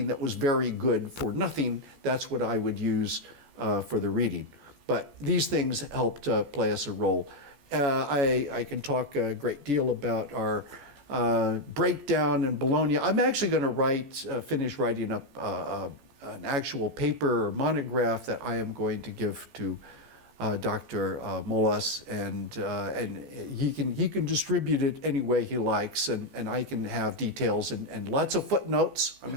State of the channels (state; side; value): late; left; 14 ms